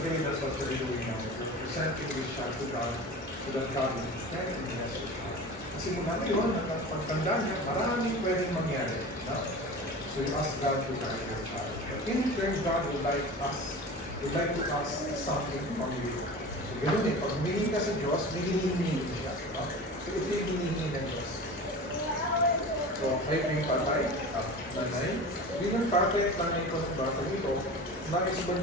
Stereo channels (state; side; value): normal; both; correlation 0.34